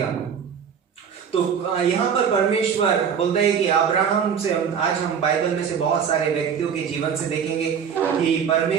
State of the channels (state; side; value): quieter; left; 7.3 dB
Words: तो यहाँ पर परमेश्वर बोलता है कि अब्राहम से, आज हम बाइबल में से बहुत सारे व्यक्तियों के जीवन से देखेंगे कि